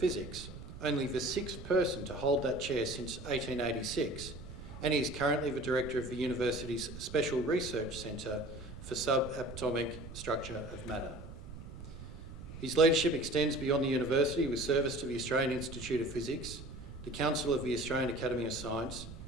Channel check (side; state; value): right; noise; rumble, 12 dB below the sound